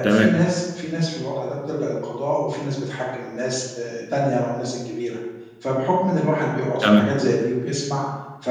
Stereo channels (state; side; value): identical; both; correlation 1.00